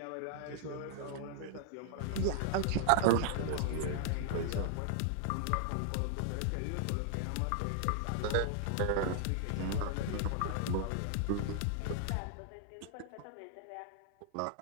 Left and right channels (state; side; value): different; both; correlation -0.01